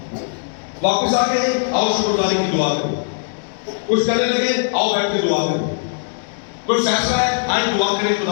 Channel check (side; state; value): right; silent; digital silence